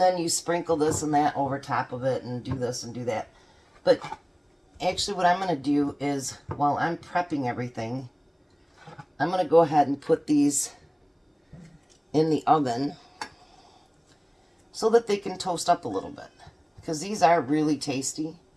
then you sprinkle this and that over top of it and do this and do that. But actually what I'm going to do is, while I'm prepping everything, I'm going to go ahead and put these in the oven so that they can toast up a little bit, because these are really tasty,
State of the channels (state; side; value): identical; both; correlation 1.00